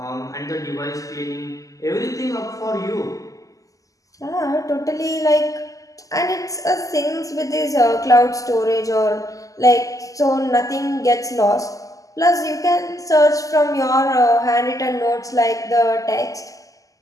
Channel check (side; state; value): right; late; 0.17 ms